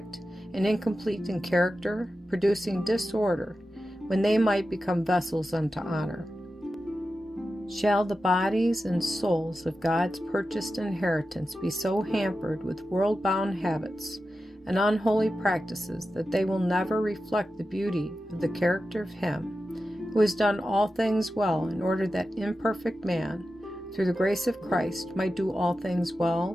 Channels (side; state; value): both; normal; correlation 0.92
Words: and incomplete in character, producing disorder, when they might become vessels unto honor? Shall the bodies and souls of God's purchased inheritance be so hampered with world-bound habits and unholy practices that they will never reflect the beauty of the character of Him who has done all things well, in order that imperfect man, through the grace of Christ, might do all things